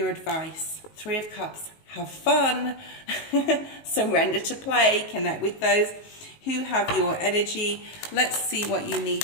advice. 3 of Cups, have fun, surrender to play, connect with those who have your energy. Let's see what you need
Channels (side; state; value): right; late; 19 ms